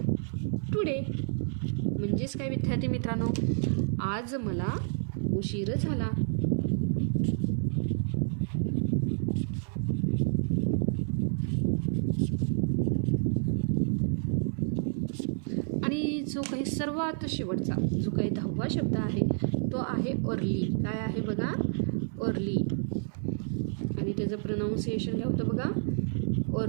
today. म्हणजेच काय विद्यार्थी मित्रांनो? आज मला उशीर झाला. आणि जो काही सर्वात शेवटचा जो काही 10वा शब्द आहे तो आहे अर्ली. काय आहे बघा, अर्ली. आणि त्याचं प्रोनाऊन्सिएशन काय होतं बघा,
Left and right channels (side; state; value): left; silent; 58 dB below the other